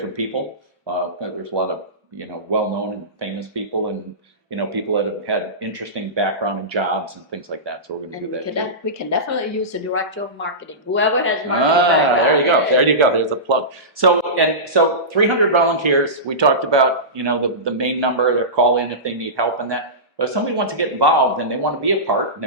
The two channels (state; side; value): normal; both; correlation -0.19